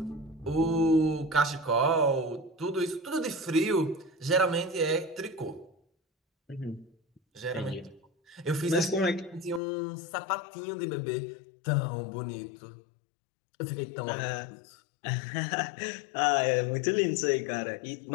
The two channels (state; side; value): drops out; right; at 9.6 s